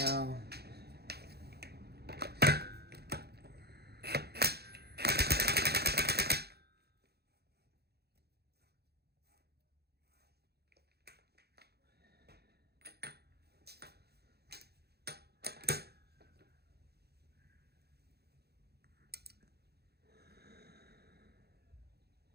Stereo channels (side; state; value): left; late; 0.47 ms